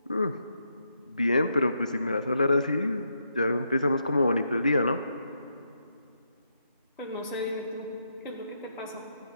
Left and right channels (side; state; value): both; inverted; correlation -0.80